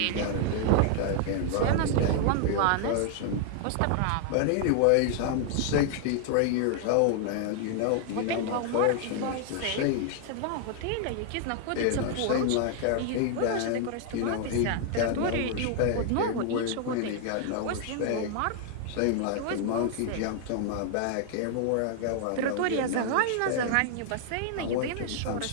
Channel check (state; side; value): different; both; correlation 0.00